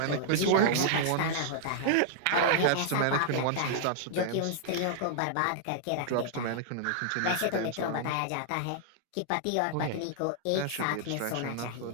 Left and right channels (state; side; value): different; both; correlation -0.01